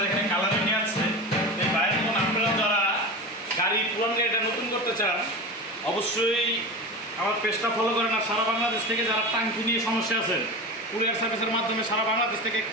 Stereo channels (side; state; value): both; normal; correlation 0.27